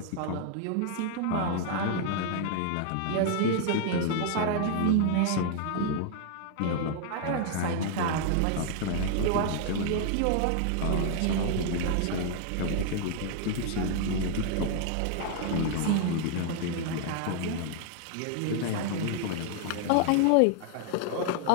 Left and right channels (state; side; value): different; both; correlation 0.00